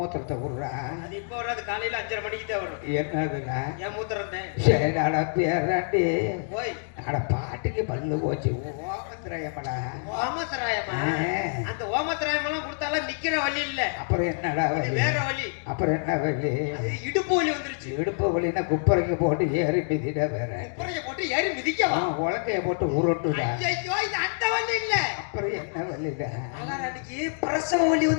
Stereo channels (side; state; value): right; silent; digital silence